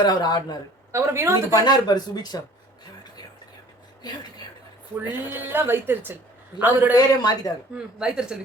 அவர் ஆடினாரு. அப்புறம் வினோத் பண்ணாரு பாரு சுபிக்ஷா, ஃபுல்லா வைத்தறிச்சல். அவரோட பேரே மாத்திட்டாங்க, வைத்தறிச்சல்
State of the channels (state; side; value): normal; both; correlation 0.50